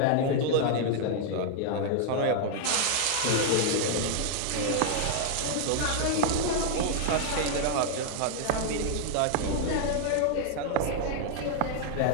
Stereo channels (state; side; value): different; both; correlation 0.00